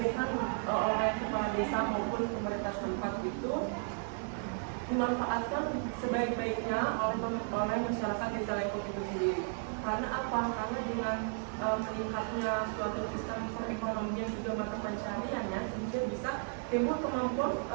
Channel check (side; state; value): left; silent; 55 dB below the other